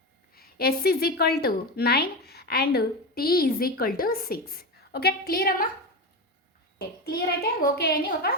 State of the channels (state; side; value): normal; both; correlation 0.19